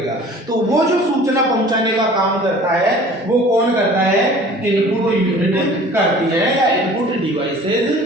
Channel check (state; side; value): normal; both; correlation 0.47